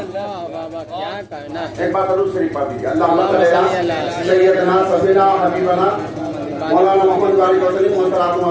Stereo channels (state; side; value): identical; both; correlation 1.00